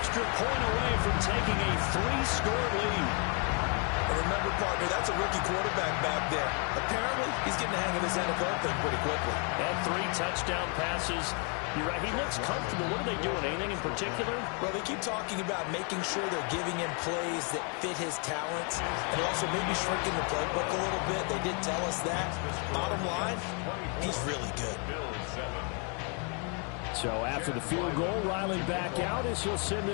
point away from taking a 3-score lead. And remember, partner, that's a rookie quarterback back there. Apparently, he's getting the hang of this NFL thing pretty quickly. And 3 touchdown passes. You're right. He looks comfortable. What are they doing? Anything in particular? Well, they keep talking about making sure they're giving him plays that fit his talents and also maybe shrinking the playbook a little bit. They did tell us that. Bottom line, he's really good. So after the field goal, Riley back out as he'll send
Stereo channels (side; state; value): right; quieter; 37.1 dB